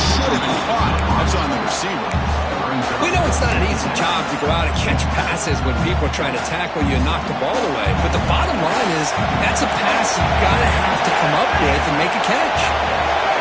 have been caught. That's on the receiver. We know it's not an easy job to go out and catch passes when people are trying to tackle you and knock the ball away. But the bottom line is that's a pass you've got to have to come up with and make a catch.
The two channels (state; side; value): identical; both; correlation 1.00